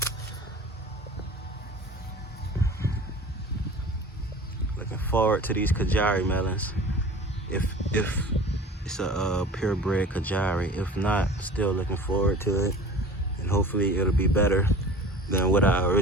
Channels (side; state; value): both; normal; correlation 0.41